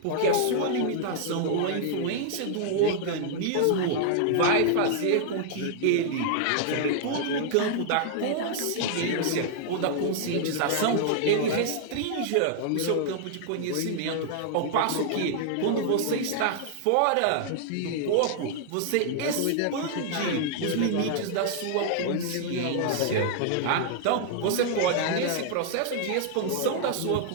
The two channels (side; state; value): both; different; correlation -0.01